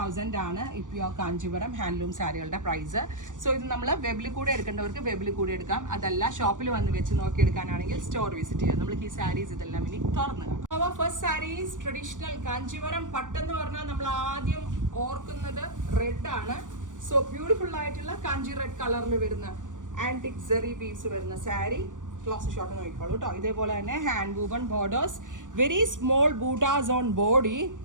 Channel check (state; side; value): late; left; 0.87 ms